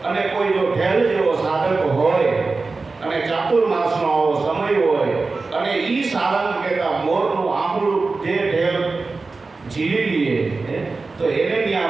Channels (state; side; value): quieter; left; 3.9 dB